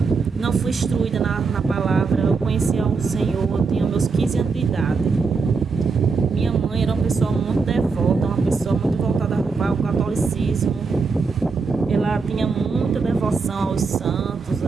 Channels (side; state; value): left; quieter; 4.7 dB